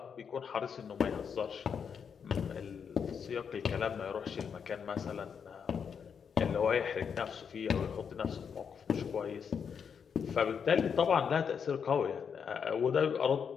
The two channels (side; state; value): right; quieter; 6.8 dB